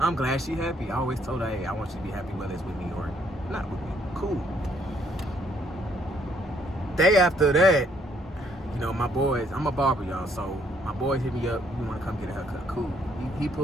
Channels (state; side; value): normal; both; correlation 0.68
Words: glad she happy. I always told her, hey, I want you to be happy whether it's with me or not with me. Cool. Day after that, you know, my boys, I'm a barber, y'all, so my boys hit me up, we want to come get a haircut. Cool. He